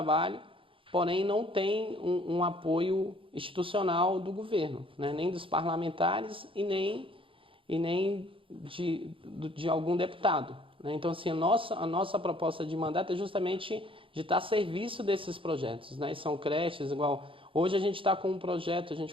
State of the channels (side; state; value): left; late; 0.25 ms